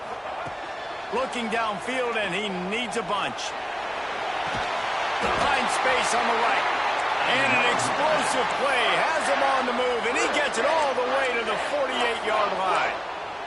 Looking downfield, and he needs a bunch. Finds space on the right. And an explosive play has him on the move, and he gets it all the way to the 48-yard line.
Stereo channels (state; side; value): identical; both; correlation 1.00